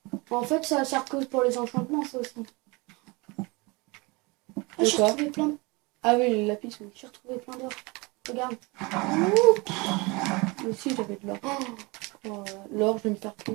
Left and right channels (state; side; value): quieter; left; 26.3 dB